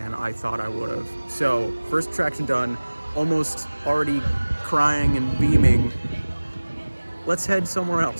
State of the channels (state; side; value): inverted; both; correlation -1.00